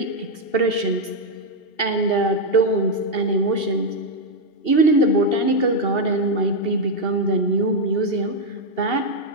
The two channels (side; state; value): right; late; 2.7 ms